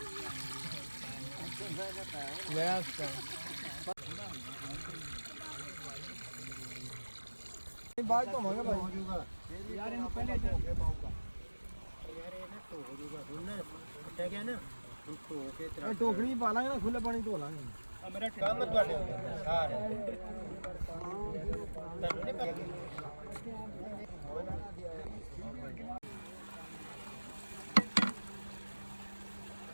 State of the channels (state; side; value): inverted; both; correlation -1.00